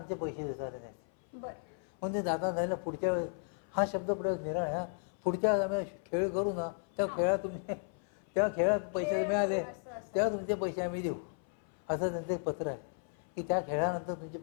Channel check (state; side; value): silent; right; 55 dB below the other